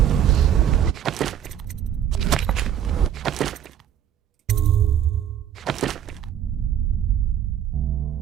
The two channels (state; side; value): quieter; left; 10.0 dB